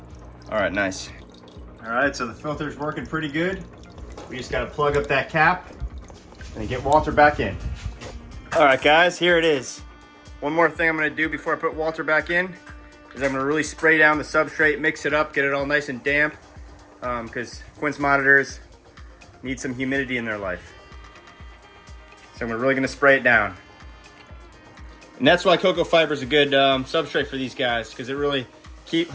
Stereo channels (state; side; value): identical; both; correlation 1.00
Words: All right, nice. All right, so the filter's working pretty good. We just gotta plug up that cap and get Walter back in. All right, guys, here it is. One more thing I'm gonna do before I put Walter back in is I'm gonna really spray down the substrate, mix it up, get it all nice and damp. because Quince monitors need some humidity in their life. So we're really gonna spray it down. And that's why cocoa fiber is a good substrate for these guys, because it really